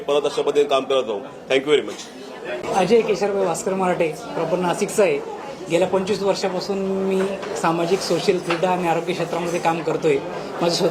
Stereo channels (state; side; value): identical; both; correlation 1.00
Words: परत अशा पद्धतीने काम करत जाऊ. Thank you very much. Ajay Kesharbhai Bhaskar Marathe, proper नाशिकचा आहे. गेल्या 25 वर्षापासून मी सामाजिक, सोशल, क्रीडा आणि आरोग्य क्षेत्रामध्ये काम करतोय. माझं